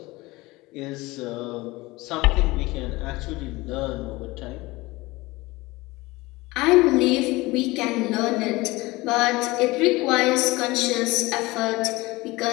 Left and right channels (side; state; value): right; quieter; 21.2 dB